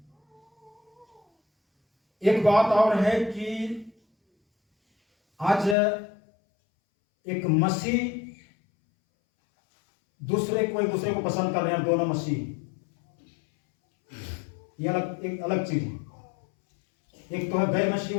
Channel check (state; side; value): drops out; right; at 5.8 s